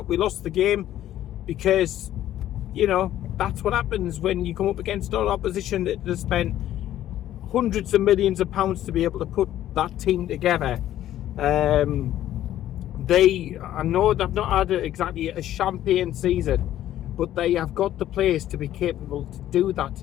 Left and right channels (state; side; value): quieter; right; 12.6 dB